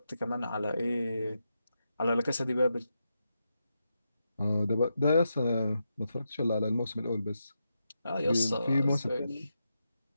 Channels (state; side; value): inverted; both; correlation -0.86